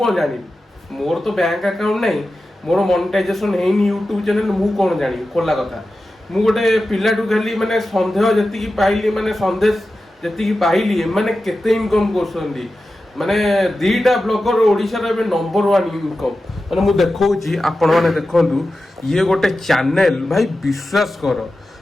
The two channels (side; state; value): both; normal; correlation 0.93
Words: जानी मोर तो बैंक अकाउंट नै मोर मोनेटाइजेशन हेनी यूट्यूब चैनल मु कोन जानी खोला कथा मु गोटे पिलाटू खाली माने संदेह जति की पाइली माने संदेश जति की पाइली माने केते इनकम करछनी माने दीटा ब्लॉगर ओडिशा रे नंबर 1 इनकम माने मु देखौची आपण माने देखंतु ये गोटे चैनल भाई विश्वास कर